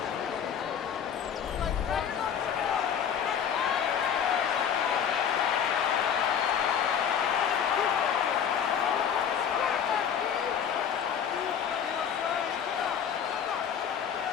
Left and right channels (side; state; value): right; quieter; 8.1 dB